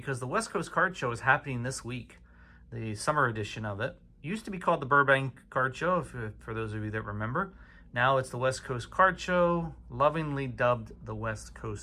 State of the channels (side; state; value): both; identical; correlation 1.00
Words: the West Coast Card Show is happening this week, the summer edition of it. It used to be called the Burbank Card Show, for those of you that remember. Now it's the West Coast Card Show, lovingly dubbed the West